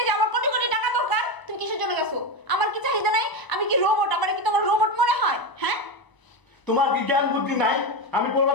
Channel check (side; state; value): right; late; 1.0 ms